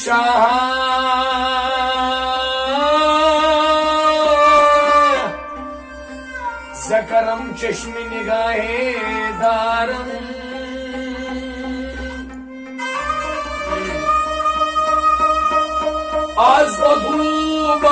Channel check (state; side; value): identical; both; correlation 1.00